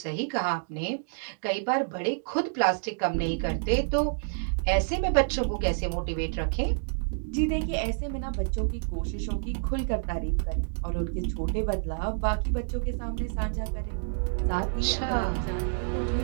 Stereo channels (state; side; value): silent; left; digital silence